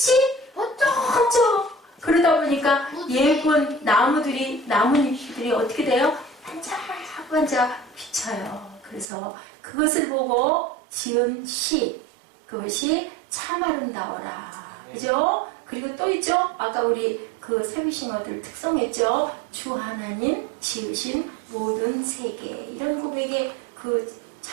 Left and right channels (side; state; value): left; drops out; at 9.1 s